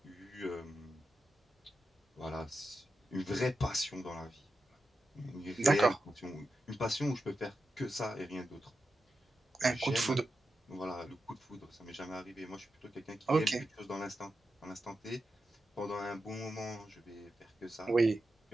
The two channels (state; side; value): normal; both; correlation 0.90